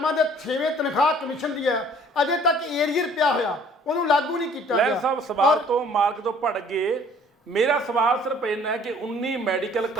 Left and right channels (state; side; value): normal; both; correlation 0.55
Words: ਦੇ 6ਵੇਂ ਤਨਖਾਹ ਕਮਿਸ਼ਨ ਦੀ ਹੈ ਅਜੇ ਤੱਕ ਏਰੀਅਰ ਪਿਆ ਹੋਇਆ ਉਹਨੂੰ ਲਾਗੂ ਨਹੀਂ ਕੀਤਾ ਗਿਆ। ਲੈਲ ਸਾਹਿਬ ਸਵਾਲ ਤੋਂ ਮਾਰਕ ਤੋਂ ਭੜ ਗਏ। ਮੇਰਾ ਸਵਾਲ ਸਿਰਫ ਇੰਨਾ ਹੈ ਕਿ 19 ਮੈਡੀਕਲ